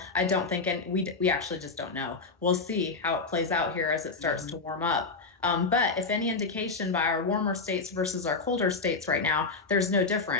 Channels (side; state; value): right; quieter; 4.2 dB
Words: I don't think, and we actually just don't know. We'll see how it plays out here as it starts to warm up. But if any indication by our warmer states versus our colder states right now, there's no